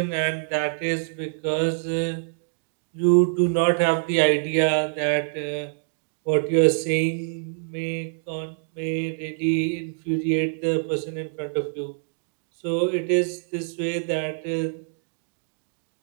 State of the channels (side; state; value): left; silent; digital silence